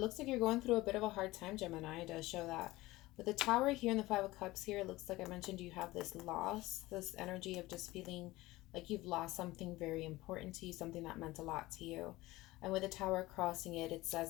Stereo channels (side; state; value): right; quieter; 19.0 dB